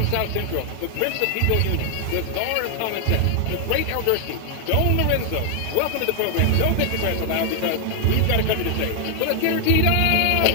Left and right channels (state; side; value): different; both; correlation 0.00